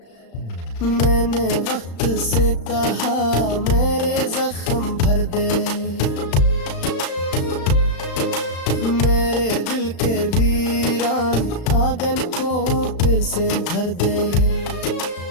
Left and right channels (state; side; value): late; right; 35 ms